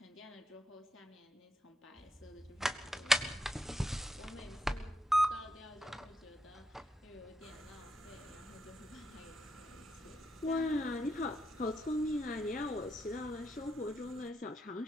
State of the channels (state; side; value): normal; both; correlation 0.82